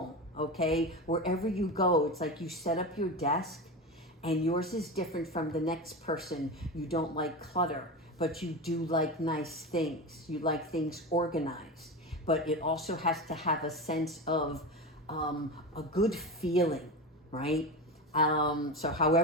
okay? Wherever you go, it's like you set up your desk and yours is different from the next person. You don't like clutter, but you do like nice things. You like things organized, but it also has to have a sense of a good feeling, right? So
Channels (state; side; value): normal; both; correlation 0.23